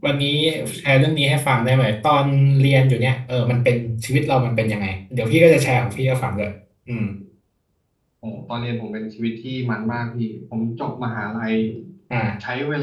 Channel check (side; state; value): both; identical; correlation 1.00